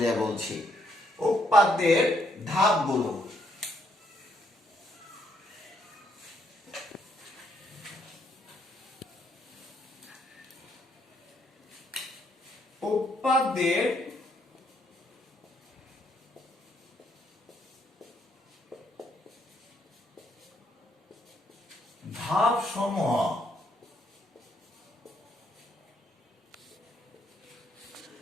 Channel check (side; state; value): both; normal; correlation 0.72